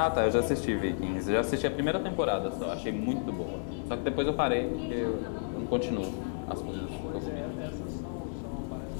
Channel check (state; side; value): silent; right; digital silence